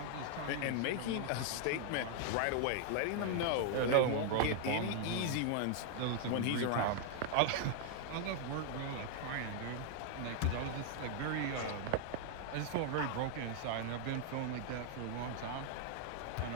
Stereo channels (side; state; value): both; different; correlation 0.00